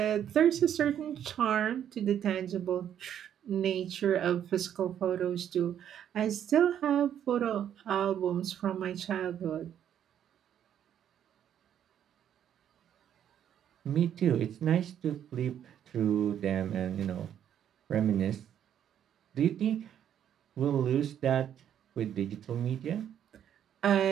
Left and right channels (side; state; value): left; quieter; 9.8 dB